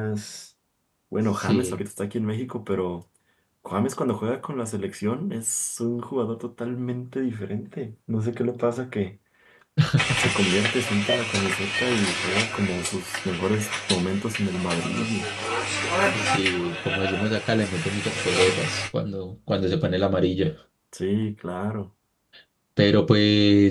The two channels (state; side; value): identical; both; correlation 1.00